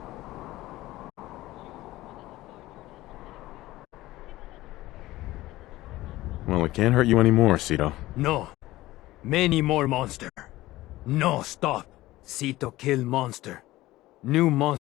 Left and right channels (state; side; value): quieter; right; 17.2 dB